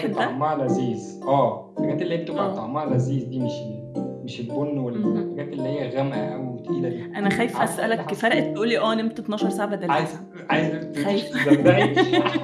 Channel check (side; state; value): both; identical; correlation 1.00